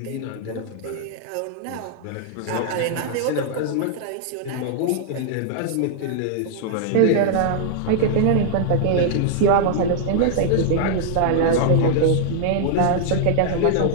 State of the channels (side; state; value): both; different; correlation 0.00